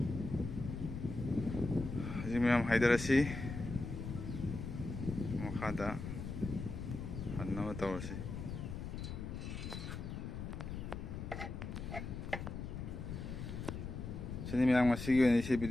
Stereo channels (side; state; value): left; noise; rumble, 6 dB below the sound